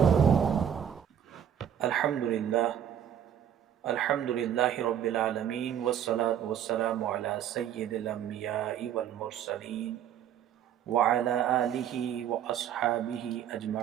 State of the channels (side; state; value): left; quieter; 9.6 dB